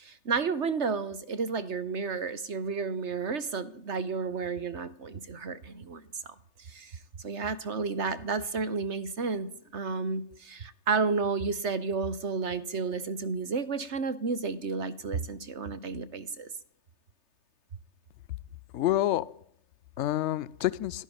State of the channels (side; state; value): left; late; 3.3 ms